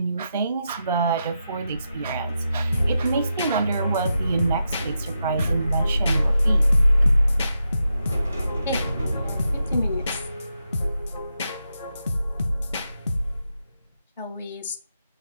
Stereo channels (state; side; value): inverted; both; correlation -0.86